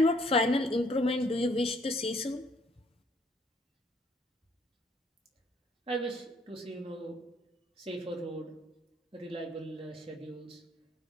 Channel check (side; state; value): both; normal; correlation 0.64